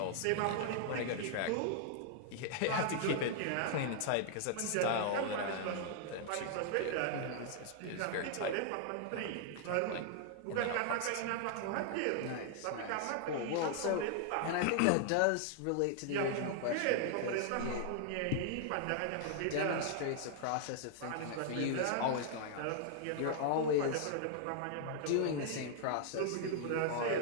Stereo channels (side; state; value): both; different; correlation -0.01